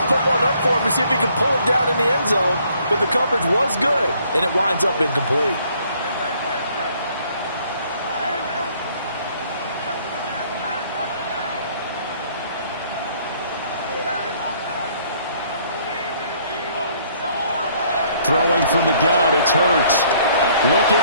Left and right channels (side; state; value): both; inverted; correlation -0.63